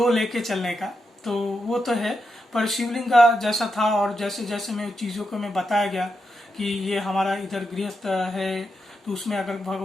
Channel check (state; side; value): normal; both; correlation 0.85